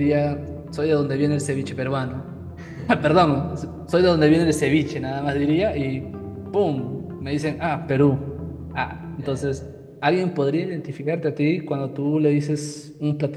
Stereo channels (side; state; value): both; identical; correlation 1.00